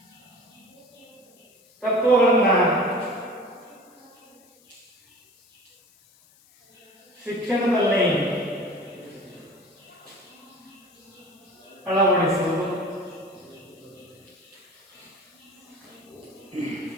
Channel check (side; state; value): left; noise; hiss, 30 dB below the sound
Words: ತತ್ವಗಳನ್ನ ಶಿಕ್ಷಣದಲ್ಲಿ ಅಳವಡಿಸುವುದು,